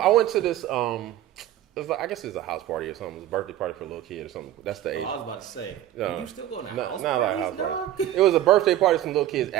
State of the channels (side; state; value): left; quieter; 12.7 dB